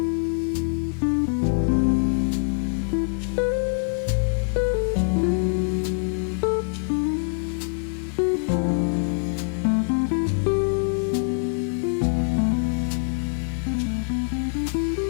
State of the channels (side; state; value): right; silent; digital silence